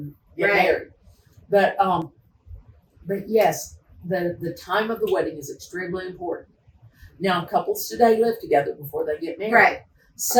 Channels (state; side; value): identical; both; correlation 1.00